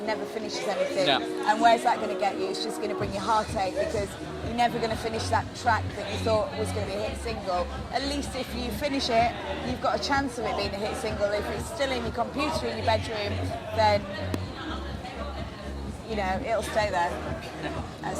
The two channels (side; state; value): both; identical; correlation 1.00